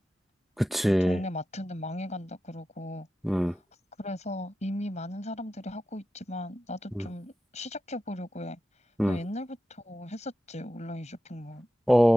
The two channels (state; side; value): normal; both; correlation 0.92